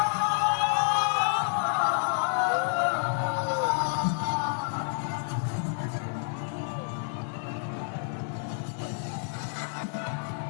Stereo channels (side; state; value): right; silent; 59 dB below the other